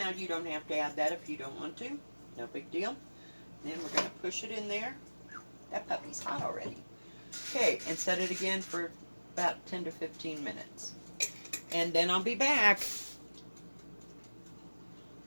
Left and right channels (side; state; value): both; inverted; correlation -1.00